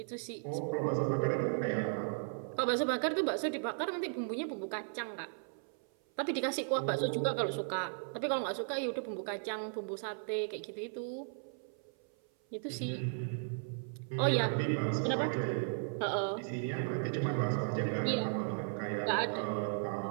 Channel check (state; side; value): silent; left; 54 dB below the other